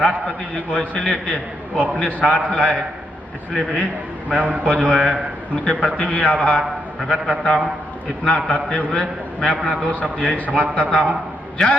जी को इसलिए कि वो अपने साथ लाए, इसलिए भी मैं उनको जो है उनके प्रति भी आभार प्रकट करता हूँ। इतना कहते हुए मैं अपना 2 शब्द यही समाप्त करता हूँ।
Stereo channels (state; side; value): normal; both; correlation 0.79